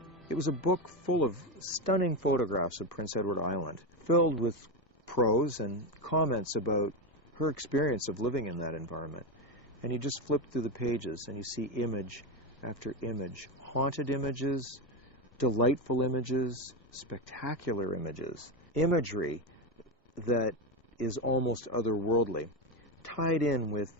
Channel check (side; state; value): both; normal; correlation 0.14